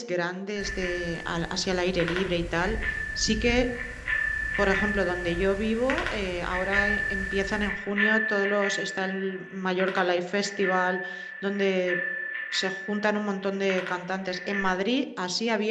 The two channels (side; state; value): both; identical; correlation 1.00